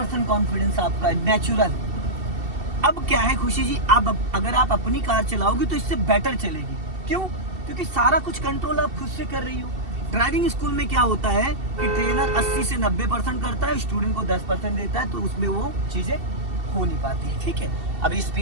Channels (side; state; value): left; late; 2.7 ms